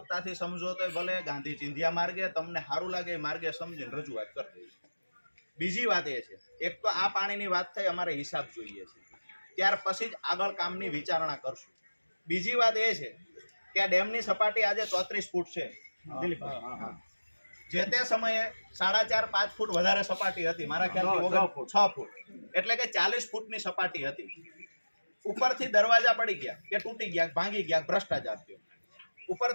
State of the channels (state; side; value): inverted; both; correlation -1.00